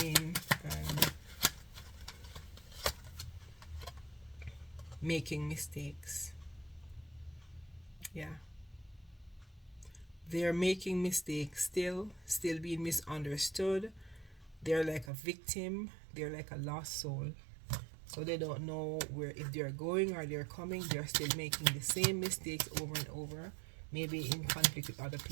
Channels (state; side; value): drops out; left; at 15.1 s